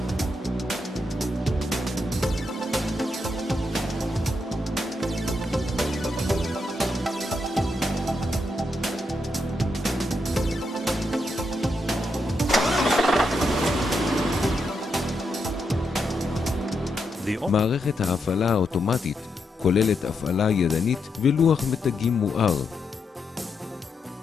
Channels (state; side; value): normal; both; correlation 0.82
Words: מערכת ההפעלה האוטומטית כוללת הפעלה ידנית ולוח מתגים מואר.